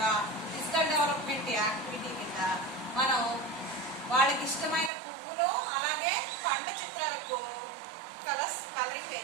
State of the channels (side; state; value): left; drops out; at 4.9 s